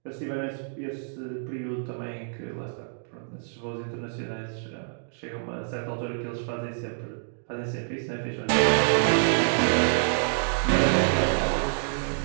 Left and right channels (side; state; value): left; silent; digital silence